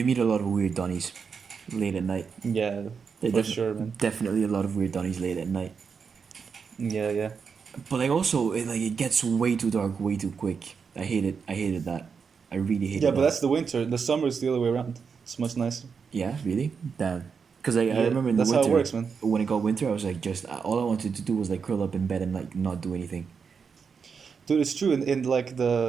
meet a lot of weird Donnies late at night. Yeah, There for sure, man. definitely a lot of weird Donnies late at night. Yeah, yeah. But like also, it gets way too dark way too quick. I hate it. I hated that. I really hated Yeah, but that. that's the winter. The summer is the other way around. It's much nicer. Yeah, really? Damn. Because I Yeah, remember in the that's how it winter, works, man. when it got winter, I was like, just all I wanted to do was like curl up in bed and like not do anything. Dude, it's true. In like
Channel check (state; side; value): quieter; left; 5.9 dB